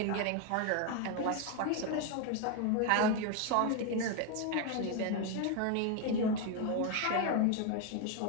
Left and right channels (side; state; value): both; different; correlation 0.01